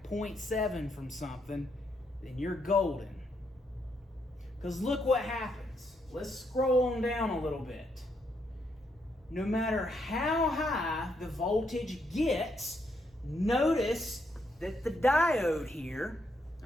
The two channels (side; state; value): both; normal; correlation 0.77